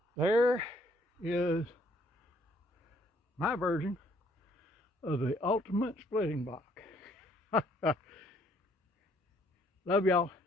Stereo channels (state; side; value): normal; both; correlation 0.64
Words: there is my version of the ultimate splitting block. Love y'all.